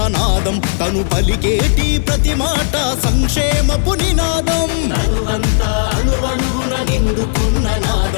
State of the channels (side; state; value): right; silent; digital silence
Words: నాదం తను పలికేటి ప్రతి మాట సంక్షేమపు నినాదం. తనువంతా అణువణువున నిండుకున్న